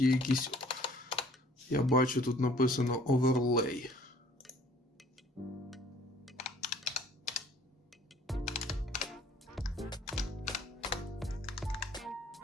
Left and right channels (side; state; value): both; normal; correlation 0.55